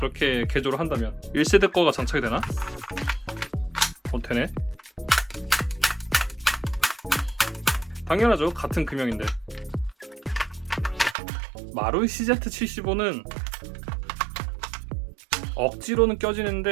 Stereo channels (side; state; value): left; drops out; at 11.2 s